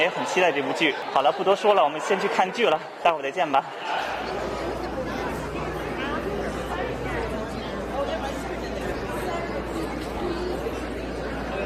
很期待这部剧。好了，不多说了，我们先去看剧了，待会儿再见吧。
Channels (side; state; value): both; identical; correlation 1.00